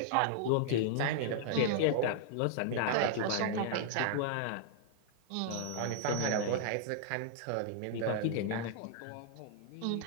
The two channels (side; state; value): both; different; correlation -0.01